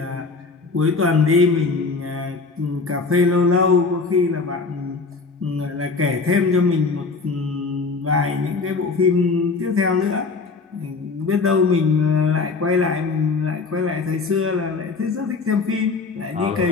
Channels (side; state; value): right; quieter; 4.3 dB